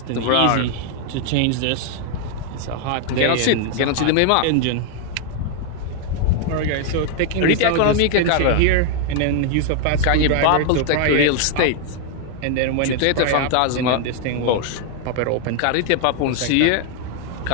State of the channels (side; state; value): both; different; correlation 0.00